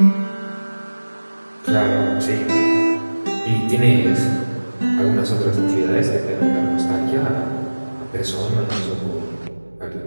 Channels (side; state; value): both; inverted; correlation -1.00